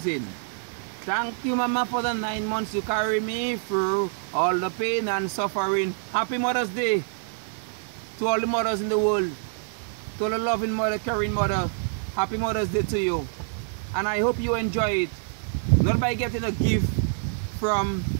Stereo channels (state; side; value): silent; left; digital silence